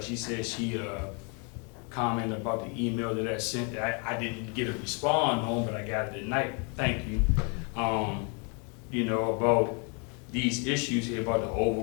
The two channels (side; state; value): right; quieter; 35.7 dB